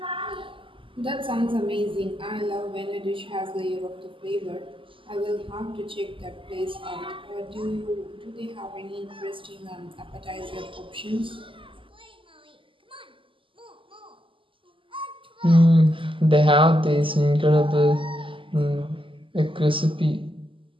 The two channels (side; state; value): left; late; 0.25 ms